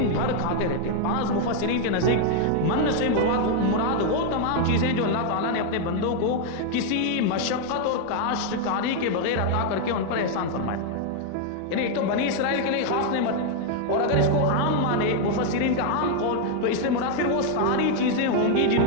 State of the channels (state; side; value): different; both; correlation 0.00